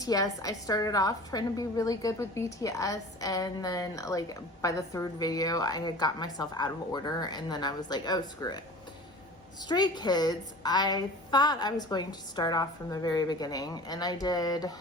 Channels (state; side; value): normal; both; correlation 0.40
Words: I started off trying to be really good with BTS, and then like by the third video I had got myself out of order, and then I was like, oh, screw it. Stray Kids, I thought I was going to start off from the very beginning, and I did